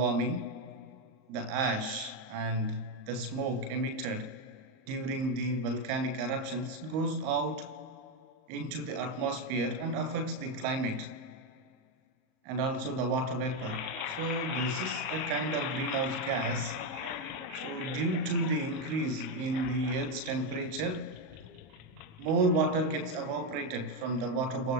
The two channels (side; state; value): left; late; 38 ms